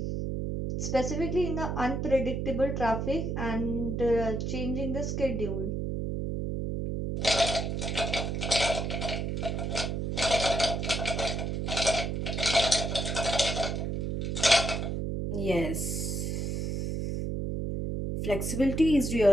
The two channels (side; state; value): right; noise; hum, 1 dB below the sound